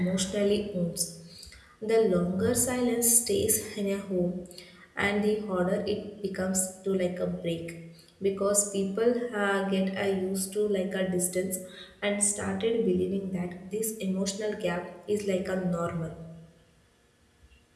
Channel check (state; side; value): identical; both; correlation 1.00